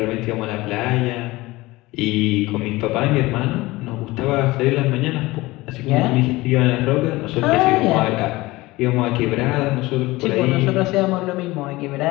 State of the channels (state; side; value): quieter; right; 20.2 dB